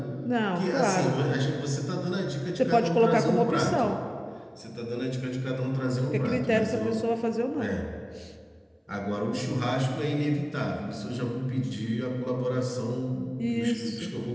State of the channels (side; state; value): both; identical; correlation 1.00